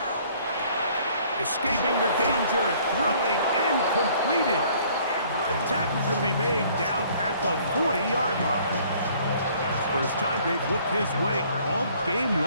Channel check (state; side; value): inverted; both; correlation -0.58